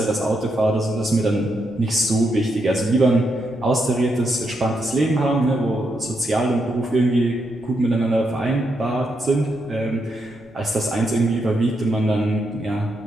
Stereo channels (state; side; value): noise; left; rumble, 27 dB below the sound